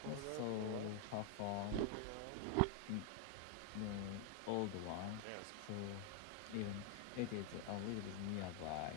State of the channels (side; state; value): both; different; correlation 0.00